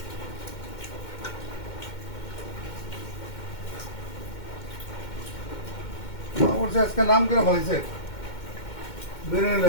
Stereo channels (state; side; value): late; right; 2.2 ms